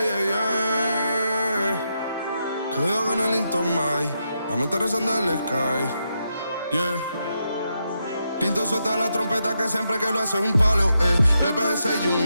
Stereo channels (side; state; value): both; inverted; correlation -0.83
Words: Quedo con el Intomai, la mente rezando el sky, yeah. Tinto suelta la trompeta que siempre que lo hace es un palo, Le PG, you